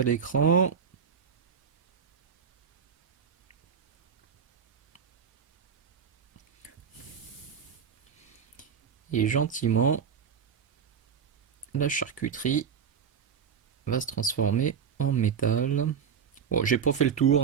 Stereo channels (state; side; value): quieter; left; 7.2 dB